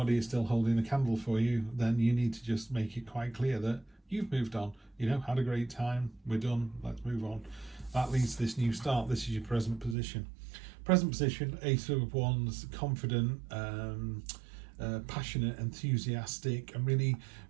is still holding a candle for you, then you need to just make it quite clear that you've moved on, had a great time, we're done, let's move on. That leads to this new start. This is your present position. Present position, Ace of Wands, confident, passionate, enthusiastic, and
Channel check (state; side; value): drops out; left; at 10.0 s